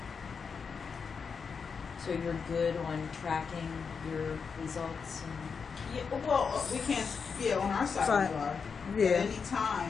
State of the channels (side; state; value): right; quieter; 5.7 dB